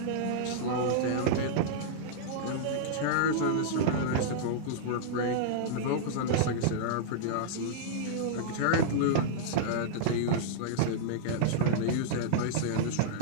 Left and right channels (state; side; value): different; both; correlation -0.02